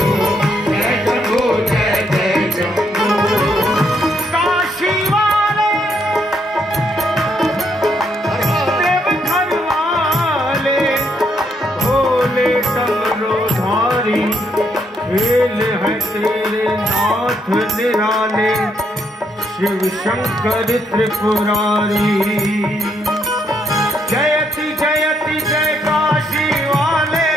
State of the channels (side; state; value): both; normal; correlation 0.74